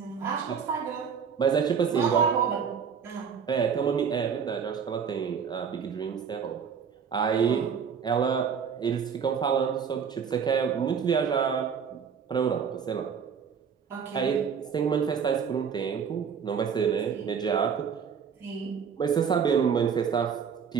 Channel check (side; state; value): left; quieter; 6.9 dB